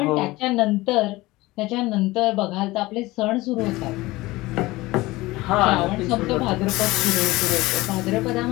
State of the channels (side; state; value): right; quieter; 19.9 dB